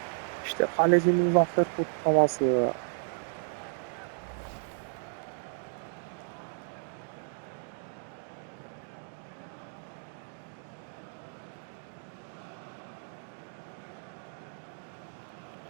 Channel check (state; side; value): silent; left; digital silence